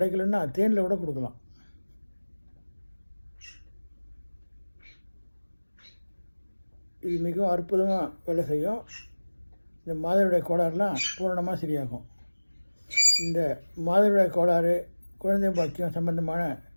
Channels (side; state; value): both; inverted; correlation -1.00